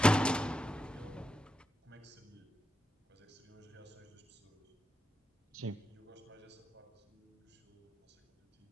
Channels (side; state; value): both; normal; correlation 0.85